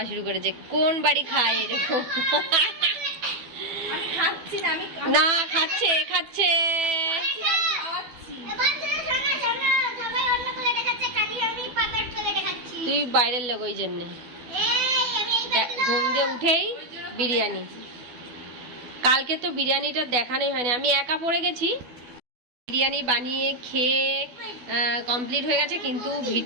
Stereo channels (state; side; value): late; left; 12 ms